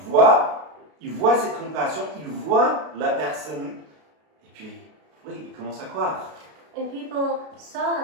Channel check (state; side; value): late; left; 33 ms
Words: ils voient cette compassion, ils voient la personne, et puis, oui, ils commencent à croire. And people